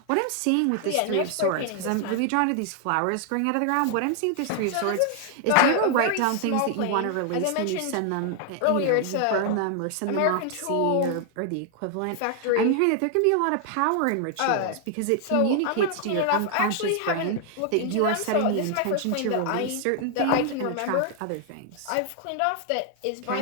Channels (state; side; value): different; both; correlation 0.00